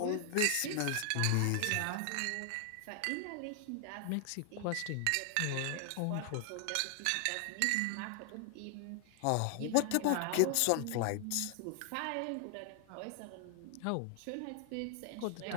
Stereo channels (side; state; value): both; different; correlation 0.00